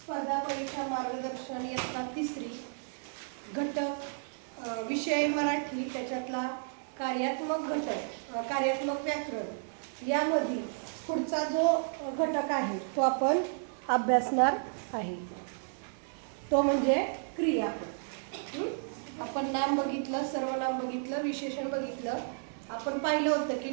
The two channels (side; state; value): left; silent; 56 dB below the other